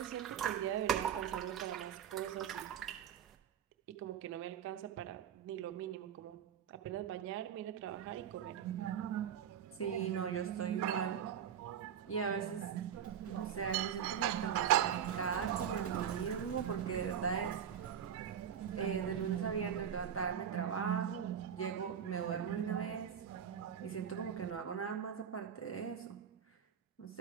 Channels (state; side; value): quieter; left; 8.7 dB